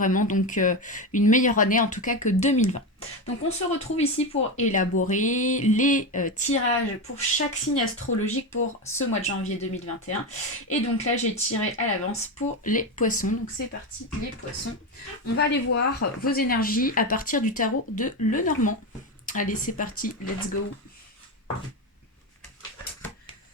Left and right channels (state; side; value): normal; both; correlation 0.15